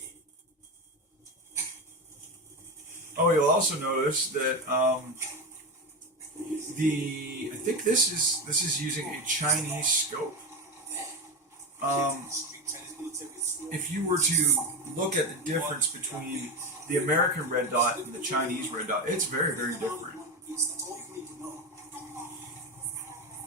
in. Oh, you'll also notice that I think this is using a Chinese scope. If you were to look at the difference between the American red dot and the Chinese red dot, it's very, very different.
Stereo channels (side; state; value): both; normal; correlation 0.17